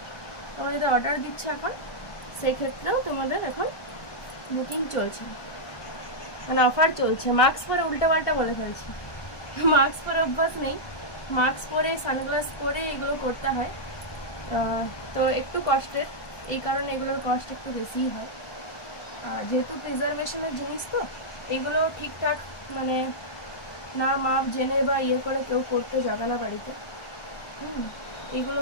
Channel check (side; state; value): right; late; 1.2 ms